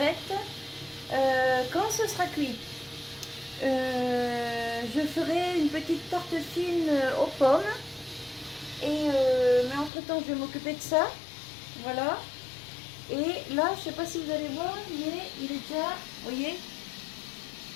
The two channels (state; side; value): drops out; right; at 9.9 s